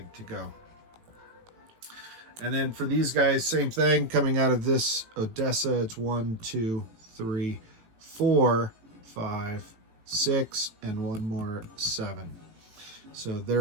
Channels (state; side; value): late; left; 18 ms